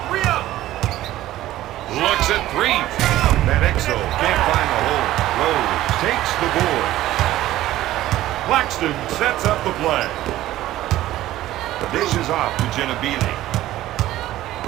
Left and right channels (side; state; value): left; quieter; 14.8 dB